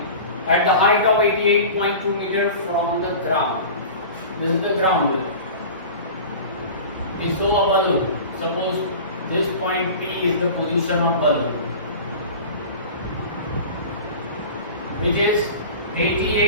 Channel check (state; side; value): inverted; both; correlation -0.36